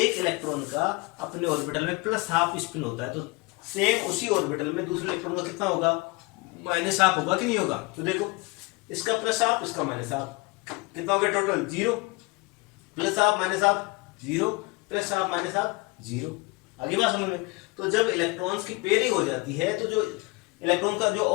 इलेक्ट्रॉन का अपने ऑर्बिटल में प्लस हाफ स्पिन होता है, तो सेम उसी ऑर्बिटल में दूसरे इलेक्ट्रॉन का कितना होगा, माइनस हाफ होगा कि नहीं होगा। तो देखो इसका प्लस हाफ, इसका माइनस हाफ, कितना हो गया total, zero. Plus half minus half zero, plus half minus half zero. आगे बात समझ में? तो जब इलेक्ट्रॉन्स की पेयरिंग हो जाती है तो जो इलेक्ट्रॉन का जो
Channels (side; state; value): right; quieter; 25.5 dB